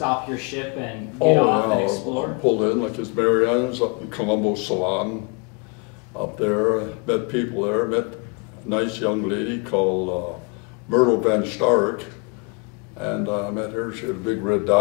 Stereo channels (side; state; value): right; quieter; 32.9 dB